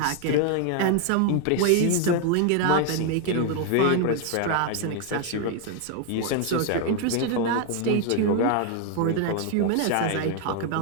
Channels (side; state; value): both; different; correlation 0.00